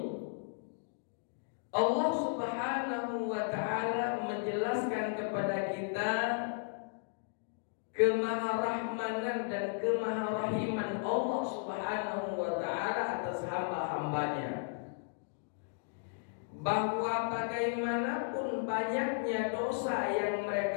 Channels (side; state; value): right; silent; digital silence